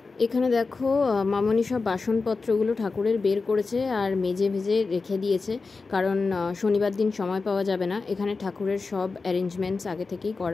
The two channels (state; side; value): quieter; right; 4.2 dB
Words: এখানে দেখো মামনি সব বাসনপত্রগুলো ঠাকুরের বের করেছে আর মেজে ভেজে রেখে দিয়েছে, কারণ শনিবার দিন সময় পাওয়া যাবে না। এখানে ঠাকুরের সব অ্যারেঞ্জমেন্টস আগে থেকেই